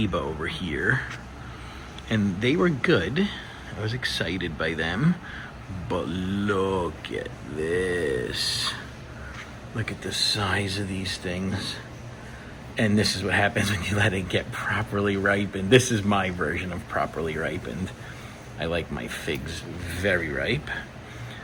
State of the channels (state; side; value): identical; both; correlation 1.00